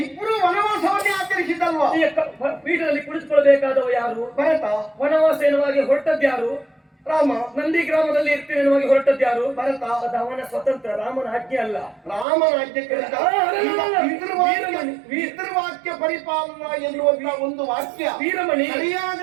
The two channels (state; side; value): drops out; left; at 12.2 s